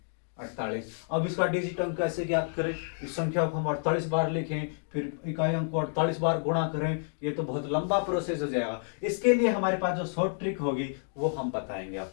48। अब इसका डिजिट अंक कैसे ज्ञात करें, इस संख्या को हम 48 बार लिखें, फिर इकाई अंक को 48 बार गुणा करें, ये तो बहुत लंबा प्रोसेस हो जाएगा। इसके लिए हमारे पास जो शॉर्ट ट्रिक होगी वो हम बताएंगे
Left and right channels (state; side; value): silent; right; digital silence